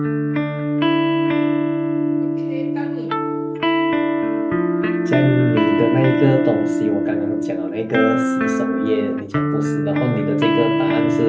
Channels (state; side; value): identical; both; correlation 1.00